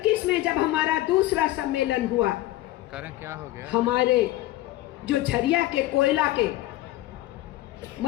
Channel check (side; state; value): right; quieter; 16.1 dB